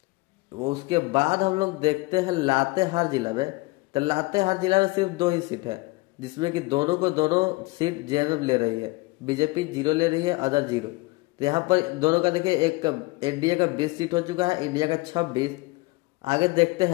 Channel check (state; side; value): quieter; right; 23.6 dB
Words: उसके बाद हम लोग देखते हैं लातेहार जिला में। तो लातेहार जिला में सिर्फ 2 ही सीट है, जिसमें कि दोनों सीट जेएमएम ले रही है। बीजेपी 0 ले रही है, अदर 0। तो यहाँ पर दोनों का देखिए, एक एनडीए का 20 सीट हो चुका है, इंडिया का 26। आगे देखते